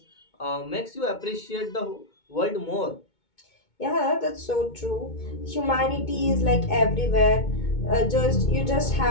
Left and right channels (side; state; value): right; late; 2.2 ms